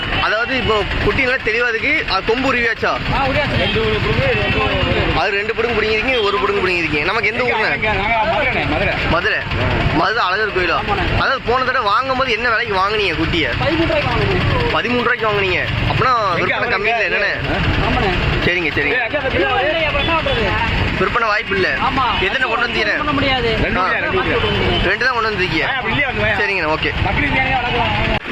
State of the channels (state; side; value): identical; both; correlation 1.00